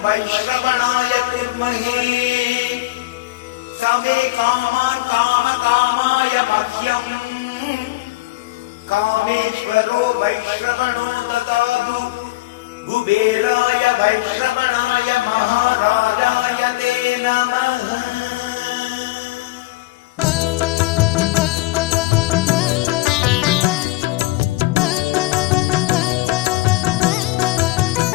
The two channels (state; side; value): quieter; right; 19.9 dB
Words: वैश्रवणाय कुर्महे समे कामान् कामकामाय मह्यम् कामेश्वरो वैश्रवणो ददातु कुबेराय वैश्रवणाय महाराजाय ते नमः।